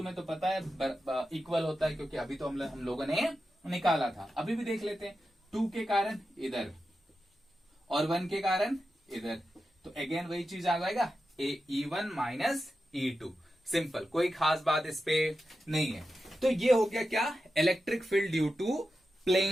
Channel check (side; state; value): both; normal; correlation 0.91